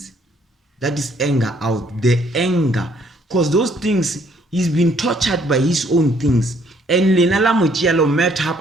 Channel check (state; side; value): normal; both; correlation 0.65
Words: That is anger out, the anger. Because those things, he's been tortured by his own things. And Lenala Mochialo met up